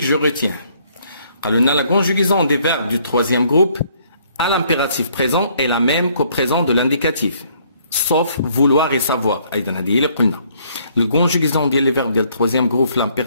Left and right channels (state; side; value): inverted; both; correlation -0.65